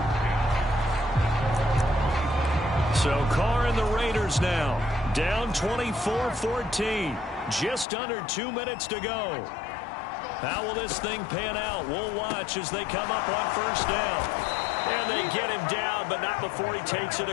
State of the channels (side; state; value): right; drops out; at 7.9 s